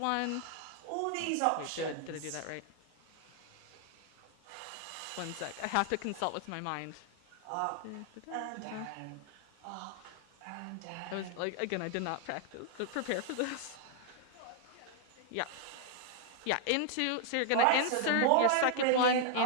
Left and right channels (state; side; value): different; both; correlation -0.01